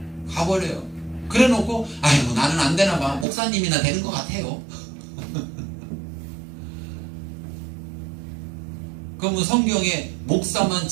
가버려요. 그래 놓고 아이고 나는 안 되나 봐. 목사님이나 되는 것 같아요. 그러면 성경에 목사만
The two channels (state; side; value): drops out; left; at 3.2 s